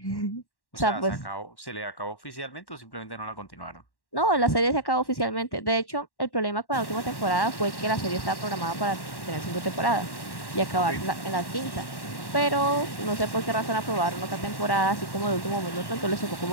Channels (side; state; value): right; late; 1.1 ms